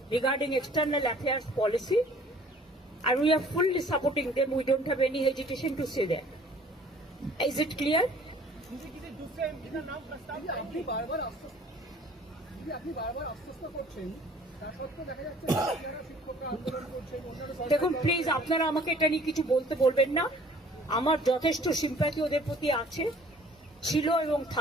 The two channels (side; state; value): both; normal; correlation 0.53